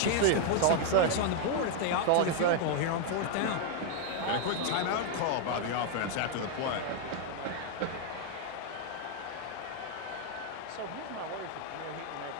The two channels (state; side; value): different; both; correlation 0.00